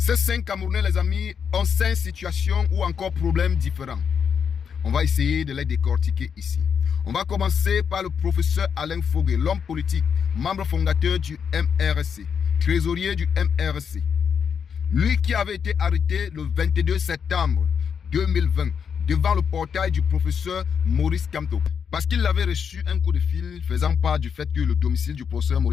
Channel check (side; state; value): right; quieter; 7.0 dB